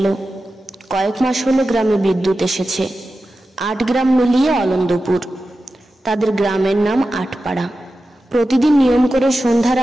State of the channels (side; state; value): both; normal; correlation 0.93